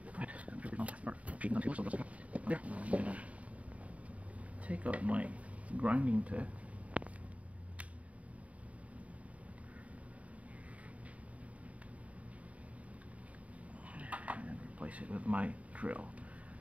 There. I'm gonna take out my grinding tip. And replace it with my drill.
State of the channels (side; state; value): left; late; 0.067 ms